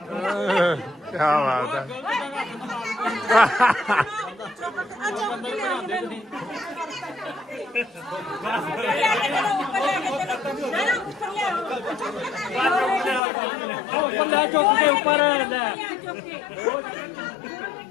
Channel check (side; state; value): right; drops out; at 13.2 s